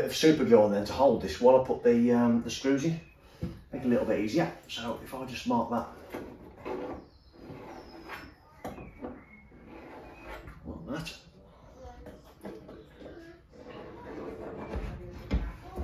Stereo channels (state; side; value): identical; both; correlation 1.00